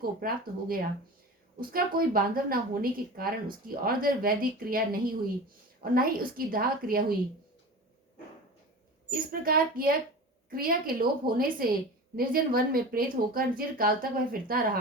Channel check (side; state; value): both; normal; correlation 0.33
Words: प्राप्त हो गया। उसका कोई बांधव न होने के कारण उसकी और वैदिक क्रिया नहीं हुई और न ही उसकी दाह क्रिया हुई। इस प्रकार क्रिया के लोप होने से निर्जन वन में प्रेत होकर चिरकाल तक वह फिरता